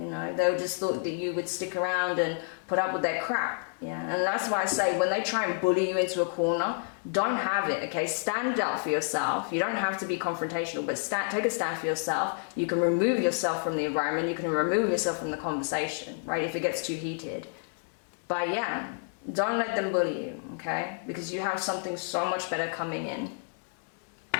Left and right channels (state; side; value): silent; right; 58 dB below the other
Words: know, they just thought that you would stick around and put up with their crap. Yeah, and that's why I say when they try and bully you into a corner, don't have it, okay? Stand up for yourself. You don't have to be confrontational, but take a stand for yourself. You can remove yourself from the environment. You can remove yourself from the conversation, right, if it gets too heated. But yeah, don't let them bully you, okay? Because you have something so much better coming in.